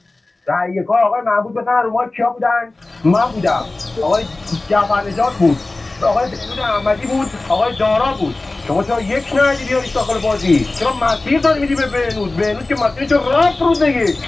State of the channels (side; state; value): right; quieter; 3.1 dB